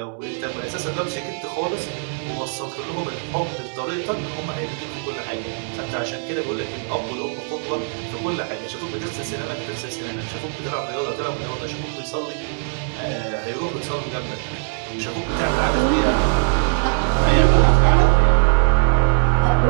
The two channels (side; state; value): left; silent; 61 dB below the other